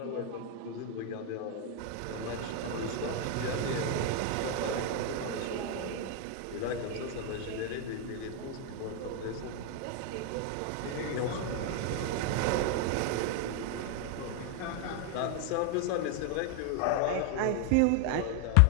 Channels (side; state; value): both; different; correlation 0.00